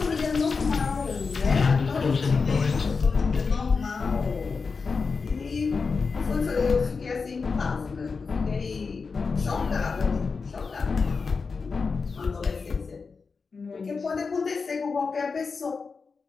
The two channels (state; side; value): quieter; right; 4.8 dB